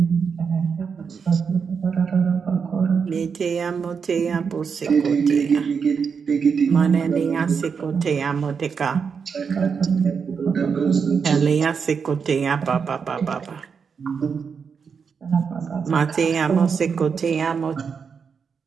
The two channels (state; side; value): quieter; left; 6.1 dB